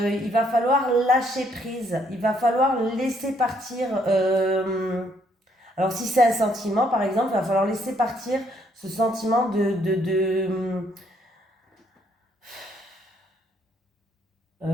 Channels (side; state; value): both; normal; correlation 0.69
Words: il va falloir lâcher prise. Il va falloir laisser partir. Alors, si c'est un sentiment, par exemple, il va falloir laisser partir ce sentiment